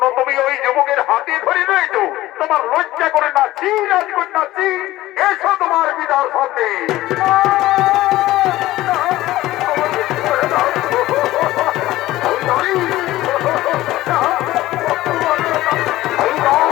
তুমি ওই যুবকের হাতে ধরে রয়েছো তোমার লজ্জা করে না চি রাজকন্যা চি এসো তোমার পিতার সামনে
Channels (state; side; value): quieter; right; 16.3 dB